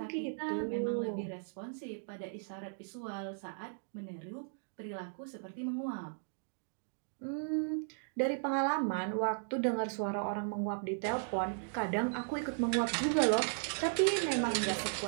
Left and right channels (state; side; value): silent; left; digital silence